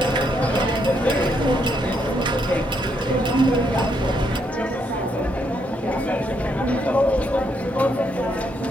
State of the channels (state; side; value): normal; both; correlation 0.75